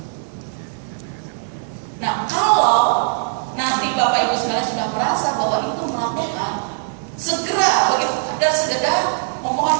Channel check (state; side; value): silent; left; digital silence